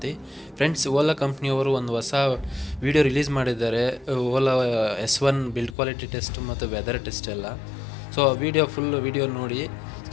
Friends, Ola ಕಂಪ್ನಿಯವರು ಒಂದು ಹೊಸ ವಿಡಿಯೋ ರಿಲೀಸ್ ಮಾಡಿದ್ದಾರೆ. Ola S1 build quality test ಮತ್ತು ವೆದರ್ ಟೆಸ್ಟ್ ಎಲ್ಲ. ಸೊ ಫುಲ್ ವಿಡಿಯೋ ನೋಡಿ,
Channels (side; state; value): right; drops out; at 5.8 s